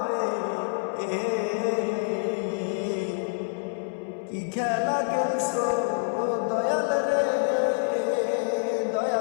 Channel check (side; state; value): right; silent; 59 dB below the other